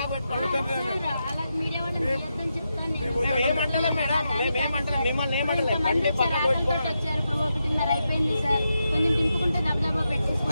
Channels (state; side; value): inverted; both; correlation -0.86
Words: మిమ్మల్ని ఏమంటలే బండి పక్కకు పెట్టుకోండి.